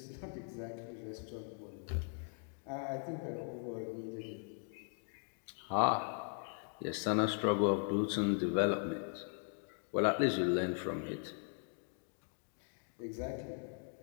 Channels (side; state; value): right; silent; 52 dB below the other